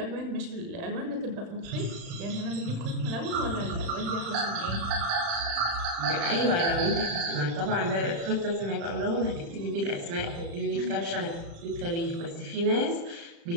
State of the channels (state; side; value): late; left; 35 ms